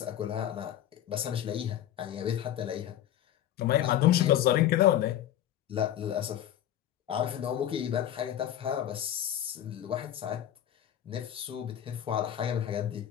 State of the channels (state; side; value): quieter; right; 11.4 dB